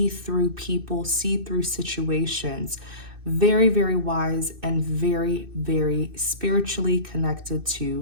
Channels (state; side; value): late; left; 2.6 ms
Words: through people, see through situations. Very, very wise and very, very spiritually connected